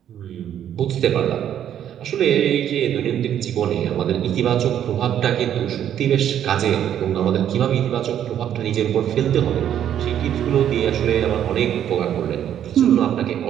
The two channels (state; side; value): quieter; left; 10.2 dB